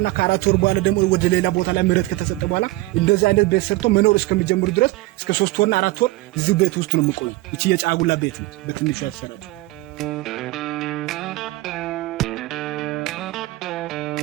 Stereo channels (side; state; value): left; quieter; 19.4 dB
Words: ከ4 ወር በኋላ ደግሞ ወደ ሌላ ቦታ ላይ ምረት ከተሰጠ በኋላ እንደዚህ አይነት ቤት ሰርቶ መኖር እስከሚጀምሩ ድረስ እስከ 3 ወርና 4 ወር እዚሁ ቤት ውስጥ ነው የሚቆዩ። እቺ የጫጉላ ቤት ነች በትንሹ ያተሰራችው።